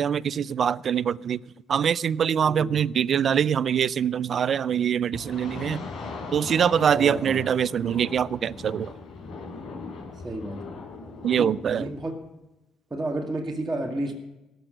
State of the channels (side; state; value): left; quieter; 6.9 dB